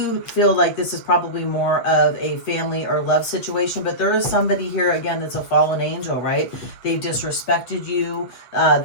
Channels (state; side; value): late; right; 8.2 ms